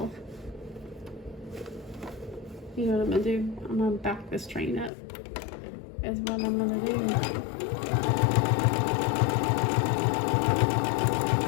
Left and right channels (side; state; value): right; drops out; at 4.9 s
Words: You know what I'm gonna do? I'm gonna back this train up, is what I'm gonna do.